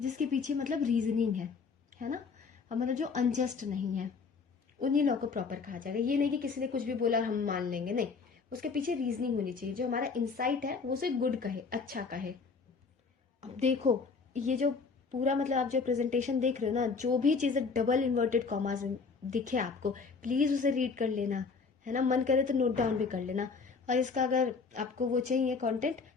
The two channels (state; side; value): quieter; right; 4.9 dB